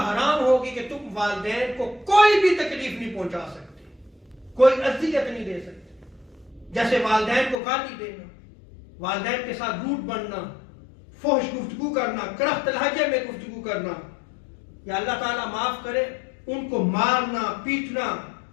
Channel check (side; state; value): right; drops out; at 7.6 s